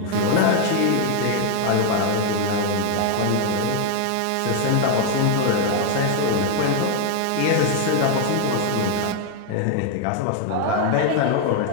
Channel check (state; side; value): different; both; correlation 0.00